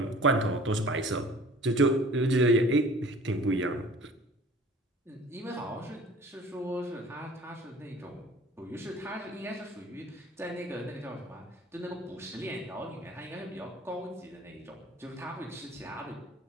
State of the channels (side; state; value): both; normal; correlation 0.48